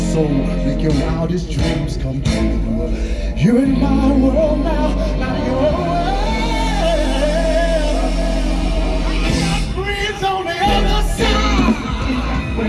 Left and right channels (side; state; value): both; identical; correlation 1.00